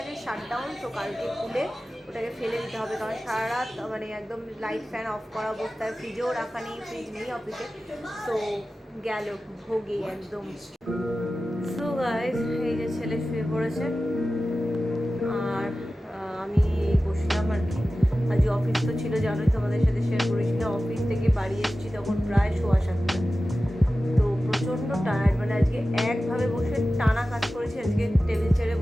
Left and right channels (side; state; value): both; normal; correlation 0.95